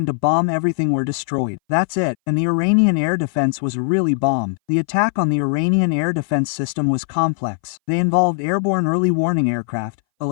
to bomb everything were destroyed. That's it, and the Iranian air defense was really bombed. The attack on the Iranian air defense system was complex. They involved airborne early warning aircraft,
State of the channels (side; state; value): right; silent; 62 dB below the other